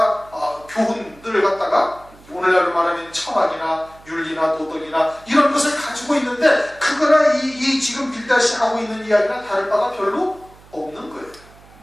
교훈들을 갖다가 오늘날로 말하면 철학이나 윤리나 도덕이나 이런 것을 가지고 있는데 그거나 이 지금 빌닷이 하고 있는 이야기나 다를 바가 별로 없는 거예요.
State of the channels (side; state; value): right; noise; hum, 25 dB below the sound